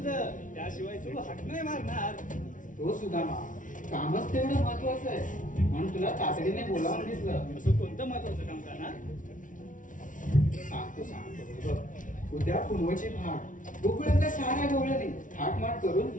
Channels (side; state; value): right; late; 0.38 ms